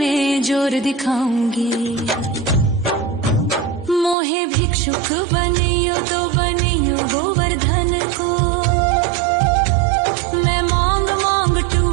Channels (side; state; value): left; drops out; at 4.2 s